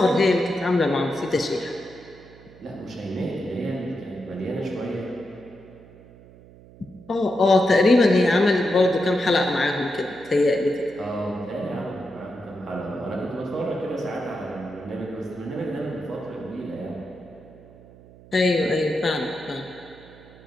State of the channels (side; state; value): right; noise; hum, 22 dB below the sound